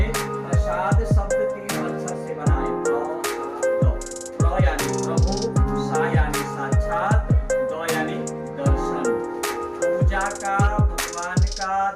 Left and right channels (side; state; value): both; identical; correlation 1.00